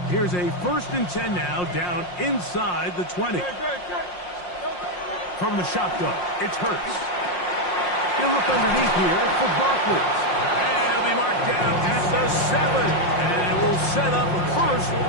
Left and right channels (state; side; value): late; right; 5.6 ms